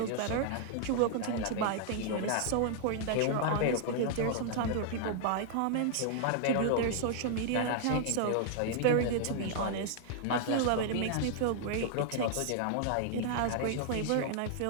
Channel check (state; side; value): different; both; correlation -0.01